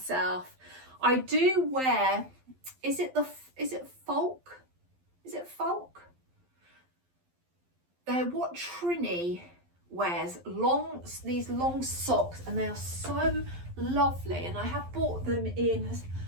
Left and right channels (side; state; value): left; late; 12 ms